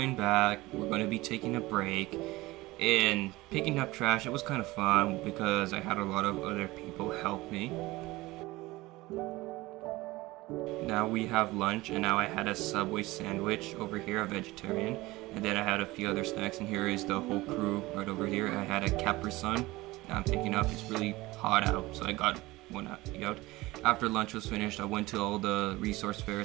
back. We're going to be taking a break and picking up trash. It was kind of fun because I had a lot of other people help me. Now we have lunch, and now I had a Subway sandwich over here, a vegetarian, and then I had a few other snacks, and here is the whole crew right over here. I had a Capri Sun. Now I'm picking up. It's really hot out, so I got one out. After lunch was finished, I went to all the resource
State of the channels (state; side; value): quieter; left; 19.9 dB